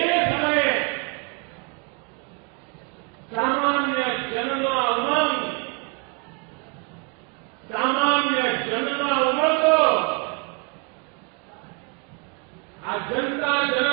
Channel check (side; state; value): left; quieter; 32.2 dB